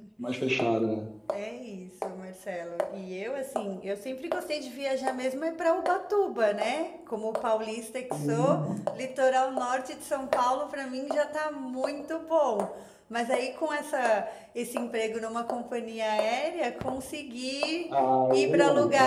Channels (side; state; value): both; identical; correlation 1.00